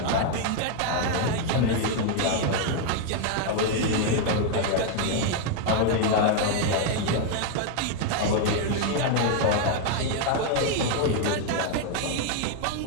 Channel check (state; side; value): different; both; correlation 0.01